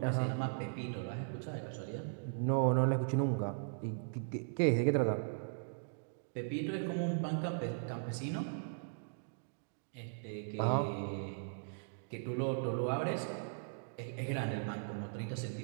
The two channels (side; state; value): left; silent; digital silence